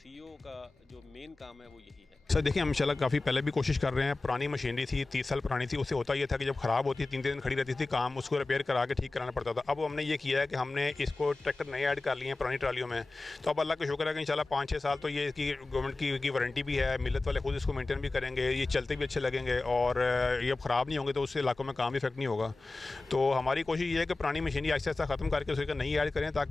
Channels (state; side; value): quieter; right; 3.3 dB